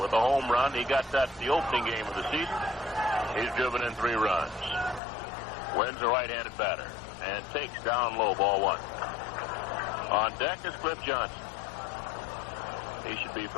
with a home run. He got that the opening game of the season. He's driven in 3 runs. Wynn's a right-handed batter and takes down low, ball 1. On deck is Cliff Johnson. He should be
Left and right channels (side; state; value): right; drops out; at 5.0 s